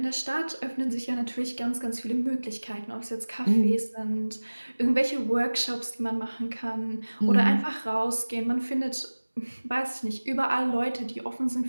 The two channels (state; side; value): inverted; both; correlation -1.00